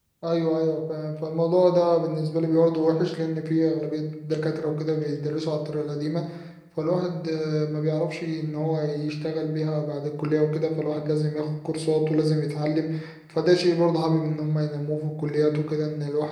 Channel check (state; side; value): identical; both; correlation 1.00